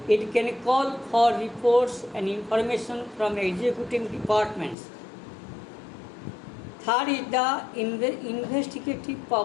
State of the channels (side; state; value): right; drops out; at 4.8 s